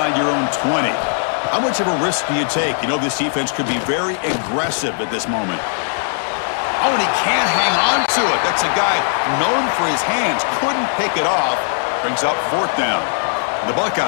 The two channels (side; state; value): right; silent; digital silence